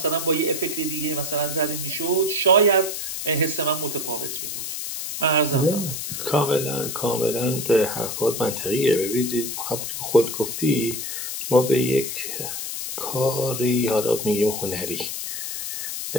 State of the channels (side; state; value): left; noise; hiss, 5 dB below the sound